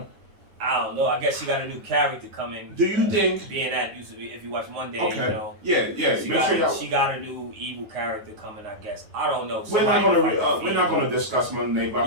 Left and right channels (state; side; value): late; left; 9.5 ms